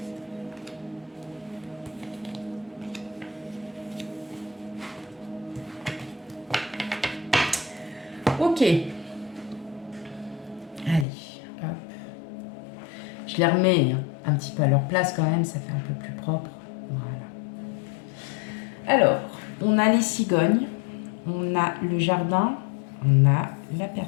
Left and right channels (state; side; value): drops out; right; at 11.1 s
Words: Ok. Allez, hop. Je les remets un petit peu à leur place quand même, ça fait un peu plus propre. Voilà. Alors, on a les cigognes, on a le jardin, on a la